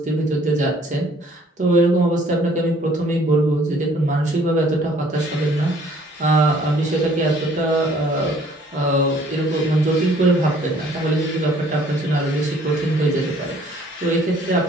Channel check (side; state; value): both; normal; correlation 0.58